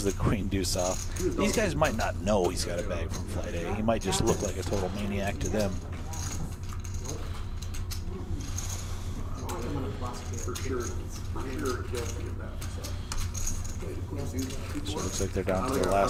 the queen deuce off. These guys might not know he's got a bag from Flight A. He might just look like a total maniac to them. So it looks like they're down to the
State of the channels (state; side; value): identical; both; correlation 1.00